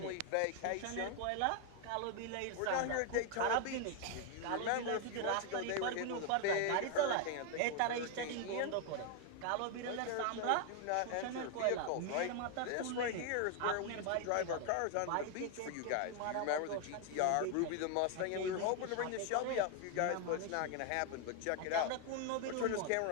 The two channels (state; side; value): different; both; correlation 0.00